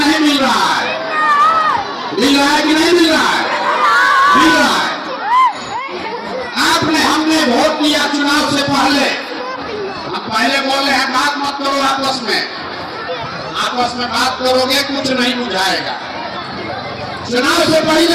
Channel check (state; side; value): identical; both; correlation 1.00